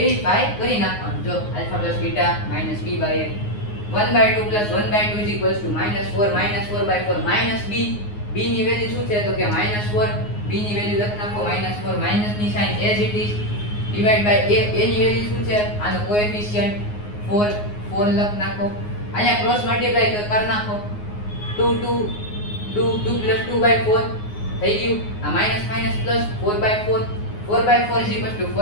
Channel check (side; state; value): right; late; 9.6 ms